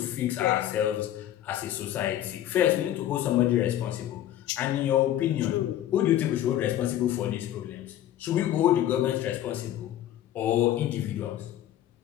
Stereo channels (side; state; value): right; quieter; 12.2 dB